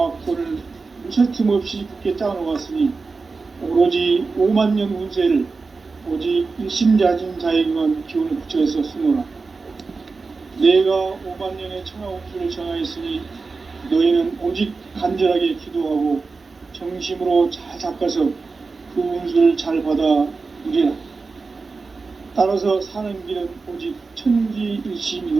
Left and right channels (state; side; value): quieter; left; 4.2 dB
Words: 무설틈 없이 굳게 짜놓았으니 오로지 5만 년 운세를 오직 일심자진 자에게만 기운을 붙여서 쓰노라. 내가 5만 년의 천하 운수를 정하였으니 너희는 오직 간절하게 기도하고 정심으로 잘 닦아서 그 운수를 잘 받아 누리라. 따라서 사는 길은 오직